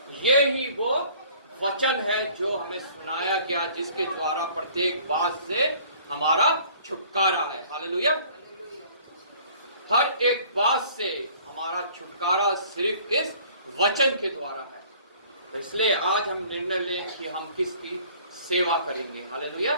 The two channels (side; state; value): both; inverted; correlation -0.53